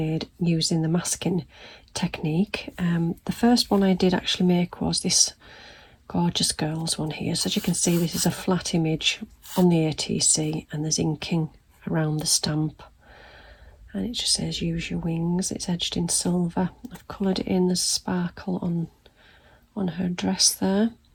using the masking technique. The first one I did actually make was this Gorgeous Girls one here. So as you can see, this is a flat image on the ATC and there's inking around the stamp. And it just says use your wings. It's edged in silver. I've coloured it in, there's sparkle on her dress there.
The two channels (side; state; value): both; identical; correlation 1.00